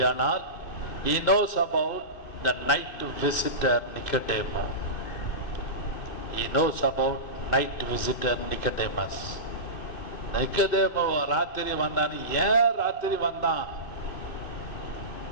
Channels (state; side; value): late; right; 2.6 ms